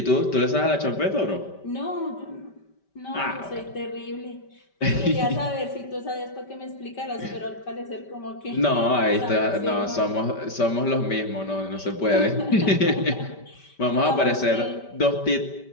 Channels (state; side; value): late; right; 5.1 ms